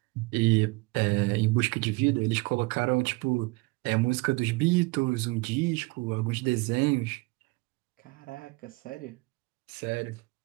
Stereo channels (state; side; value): quieter; left; 25.9 dB